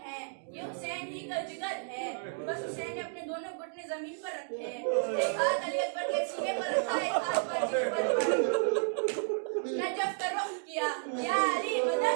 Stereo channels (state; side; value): silent; left; digital silence